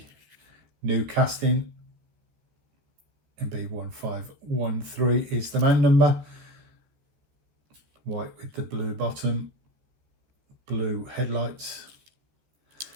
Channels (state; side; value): late; left; 14 ms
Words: new casting. MB1513 is the man number. White with the blue bottom, blue headlights,